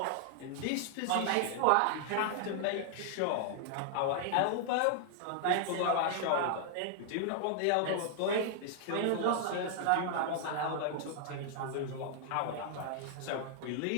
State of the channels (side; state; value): both; different; correlation -0.01